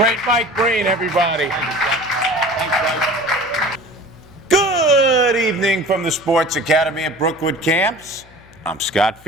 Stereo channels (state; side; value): noise; left; hum, 26 dB below the sound